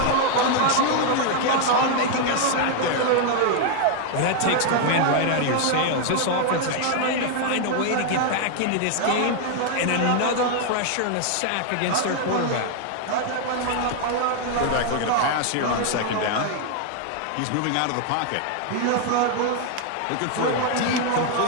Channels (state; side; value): different; both; correlation 0.00